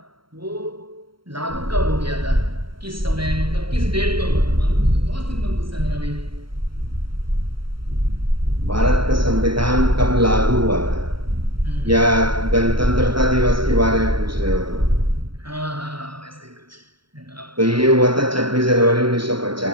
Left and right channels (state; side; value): late; left; 0.73 ms